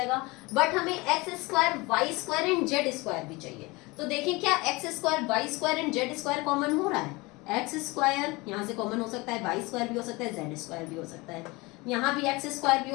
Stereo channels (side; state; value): right; quieter; 23.9 dB